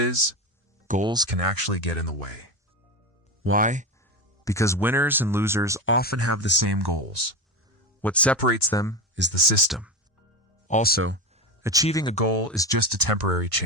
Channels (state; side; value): normal; both; correlation 0.20